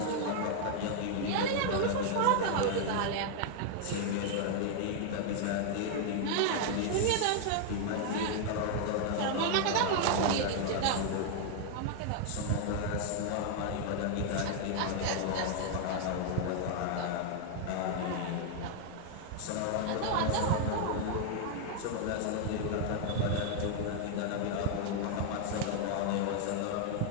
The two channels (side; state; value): both; different; correlation 0.00